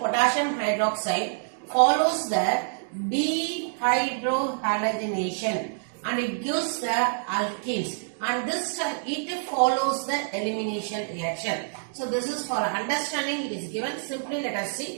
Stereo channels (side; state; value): left; silent; digital silence